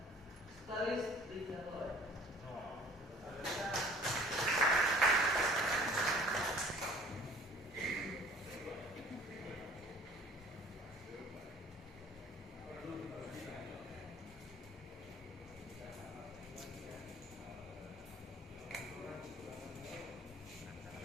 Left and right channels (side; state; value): both; normal; correlation 0.51